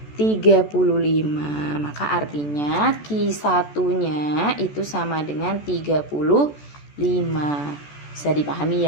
35. Maka artinya Q1-nya itu sama dengan 35. Bisa dipahami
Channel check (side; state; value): right; late; 14 ms